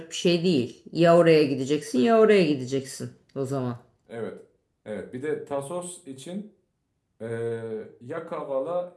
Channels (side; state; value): both; identical; correlation 1.00